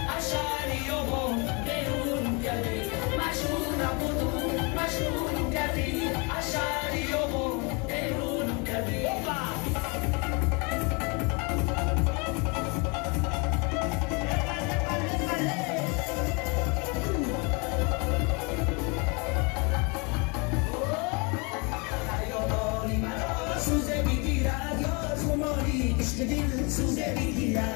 اشعری و هم بیرونم کردی مجنونم بودم مجنونم کردی اشعری و هم بیرونم کردی دل سوزه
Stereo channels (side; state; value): right; quieter; 31.2 dB